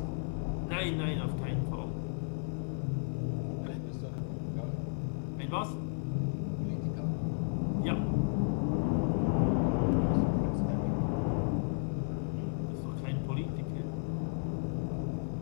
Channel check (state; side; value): silent; right; 55 dB below the other